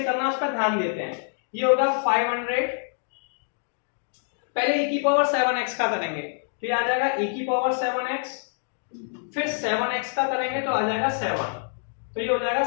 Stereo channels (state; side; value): silent; right; digital silence